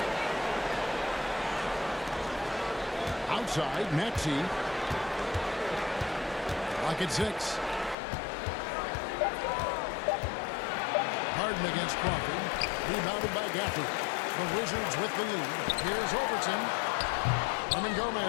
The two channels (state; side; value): drops out; right; at 8.0 s